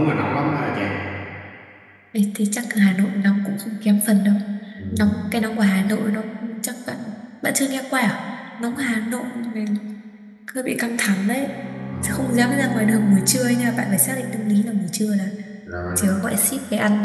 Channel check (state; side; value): identical; both; correlation 1.00